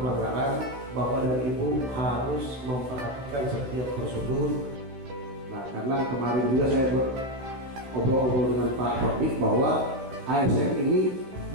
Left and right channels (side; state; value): left; late; 15 ms